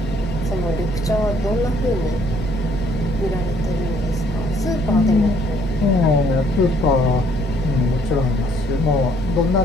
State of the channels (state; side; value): noise; right; hum, 15 dB below the sound